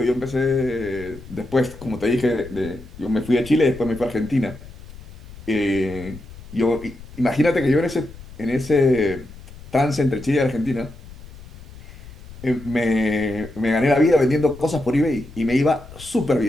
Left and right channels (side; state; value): left; noise; rumble, 17 dB below the sound